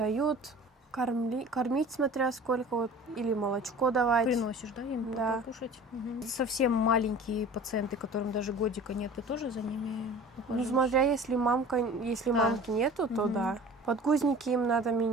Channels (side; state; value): both; normal; correlation 0.42